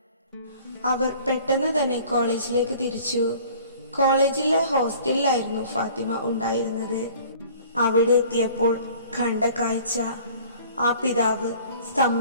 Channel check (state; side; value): inverted; both; correlation -0.50